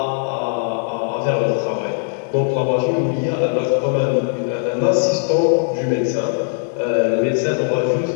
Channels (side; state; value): right; silent; 60 dB below the other